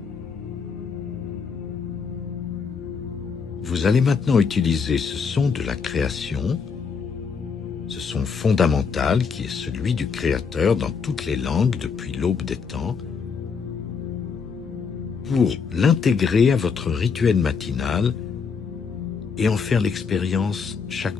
Vous allez maintenant utiliser ce son de la création, ce son fondamental qui est celui du Créateur dans toutes les langues depuis l'aube des temps, pour l'intégrer à votre rituel matinal et en faire l'expérience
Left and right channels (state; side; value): quieter; right; 5.7 dB